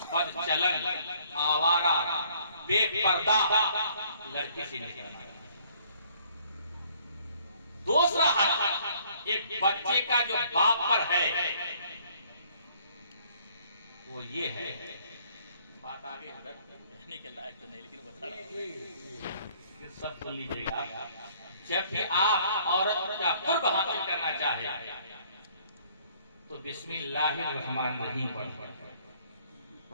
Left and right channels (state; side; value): inverted; both; correlation -0.61